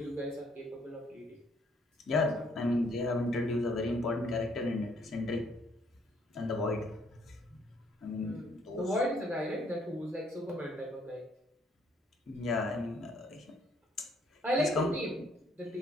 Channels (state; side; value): normal; both; correlation 0.66